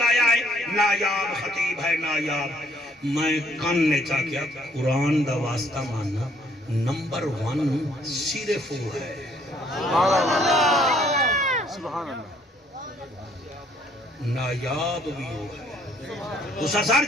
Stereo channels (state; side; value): normal; both; correlation 0.64